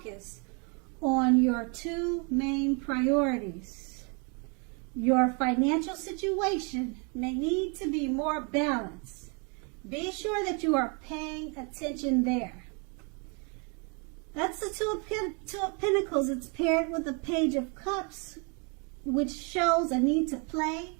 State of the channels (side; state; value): left; quieter; 34.9 dB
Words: on your two main priorities. Your financial situation may need to be more balanced. Be sure that you are paying attention there. That's the Two of Pentacles. It's paired with the Page of Cups, which shows a need to play,